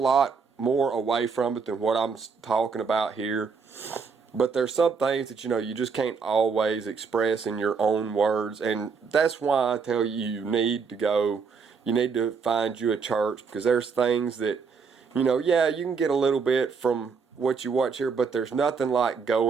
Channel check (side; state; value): left; quieter; 5.4 dB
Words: more away from it than what I'm talking about here. But there's some things that, you just can't always express in your own words. And that's why I tell you need to find you a church, because there's things that, yeah, you can get a little bit from what you watch here, but there's nothing like